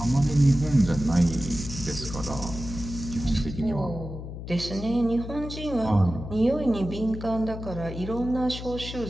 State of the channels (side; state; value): left; noise; hum, 9 dB below the sound